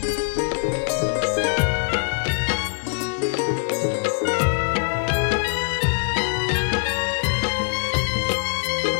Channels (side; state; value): right; silent; 63 dB below the other